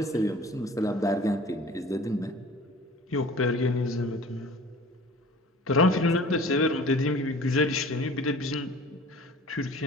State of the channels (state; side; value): normal; both; correlation 0.45